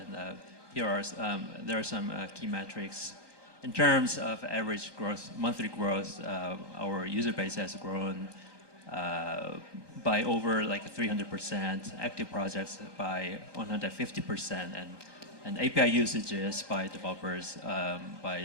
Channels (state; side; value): late; left; 1.2 ms